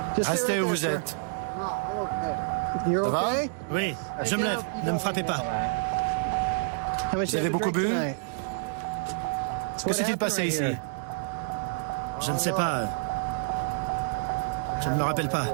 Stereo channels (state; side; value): silent; left; digital silence